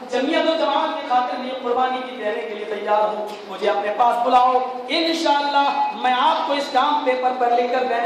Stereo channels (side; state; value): both; identical; correlation 1.00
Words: جمعیت و جماعت کی خاطر لیے قربانی کی دینے کے لیے تیار ہوں، مجھے اپنے پاس بلاؤ، انشاءاللہ میں آپ کو اس کام پیپر پر لکھ کر